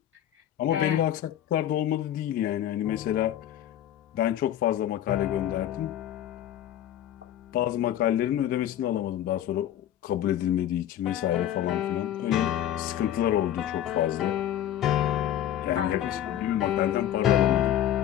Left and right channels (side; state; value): right; quieter; 11.5 dB